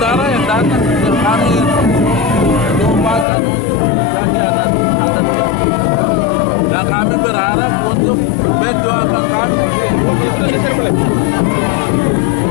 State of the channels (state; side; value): drops out; right; at 3.2 s